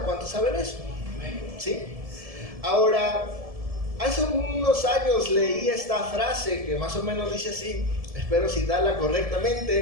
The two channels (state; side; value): late; left; 1.7 ms